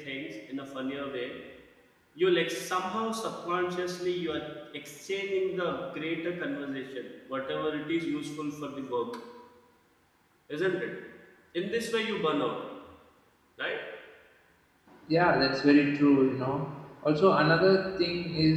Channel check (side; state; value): both; identical; correlation 1.00